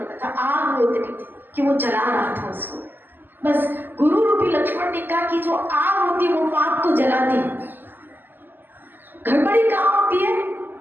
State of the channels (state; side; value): late; left; 0.092 ms